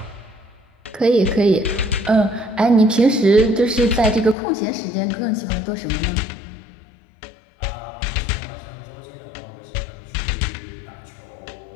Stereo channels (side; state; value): right; drops out; at 4.4 s